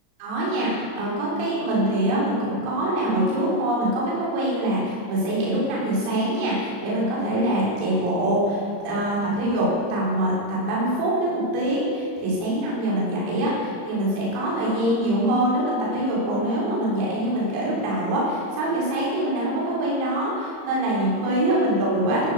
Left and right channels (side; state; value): left; late; 35 ms